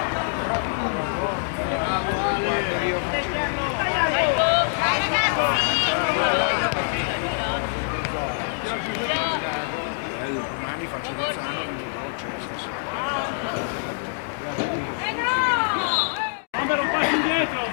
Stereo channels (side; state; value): right; silent; digital silence